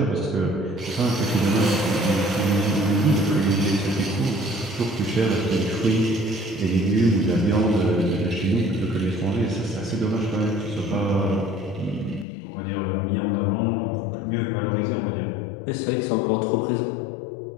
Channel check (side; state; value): right; drops out; at 12.2 s